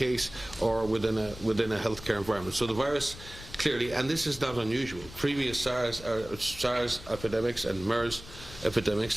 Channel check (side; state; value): left; noise; rumble, 16 dB below the sound